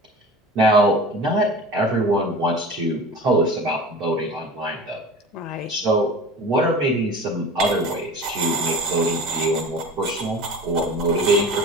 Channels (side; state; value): both; normal; correlation 0.37